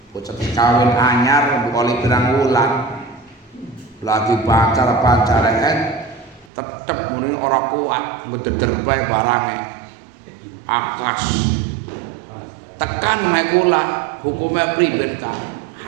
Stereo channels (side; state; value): left; drops out; at 6.5 s